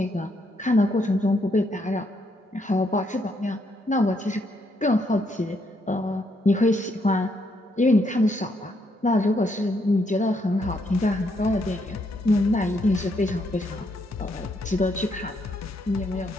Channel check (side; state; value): both; normal; correlation 0.75